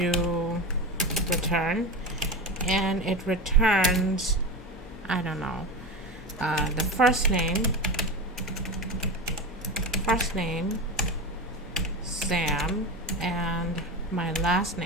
return, and it returns, I don't know, the first name, Sam, and my last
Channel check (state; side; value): normal; both; correlation 0.24